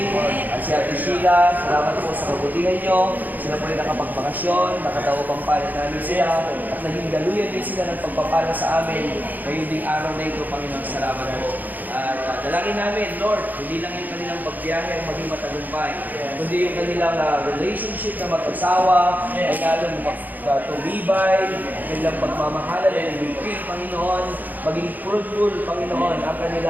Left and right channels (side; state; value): left; late; 0.084 ms